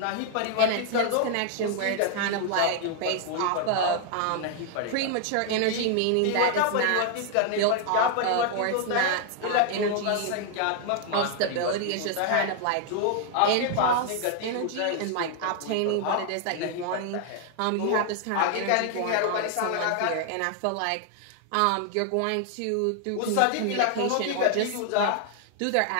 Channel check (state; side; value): different; both; correlation 0.00